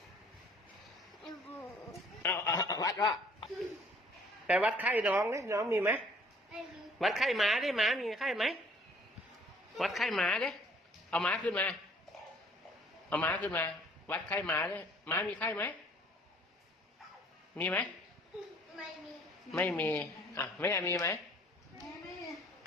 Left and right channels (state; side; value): normal; both; correlation 0.57